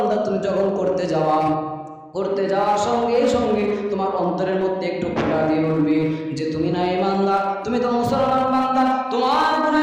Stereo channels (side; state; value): both; identical; correlation 1.00